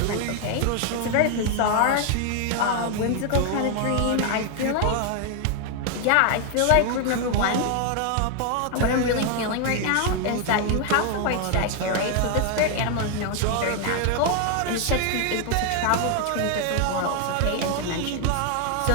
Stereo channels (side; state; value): both; different; correlation 0.00